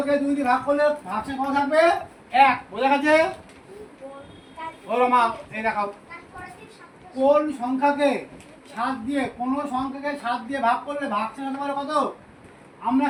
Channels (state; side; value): identical; both; correlation 1.00